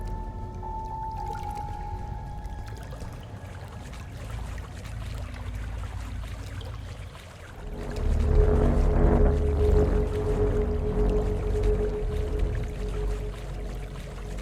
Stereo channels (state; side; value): identical; both; correlation 1.00